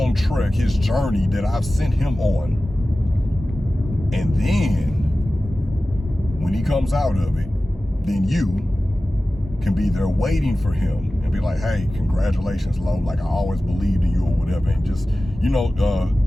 trek, his journey that I've sent him on. And then when he comes out of it, then you can be there waiting for him and be like, hey, congratulations, Lo. Like, I always believed in you or whatever. And just, you know,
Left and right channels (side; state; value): both; normal; correlation 0.96